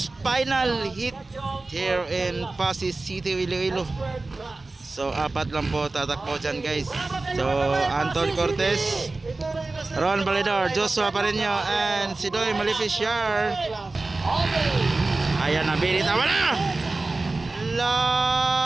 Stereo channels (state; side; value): quieter; left; 3.3 dB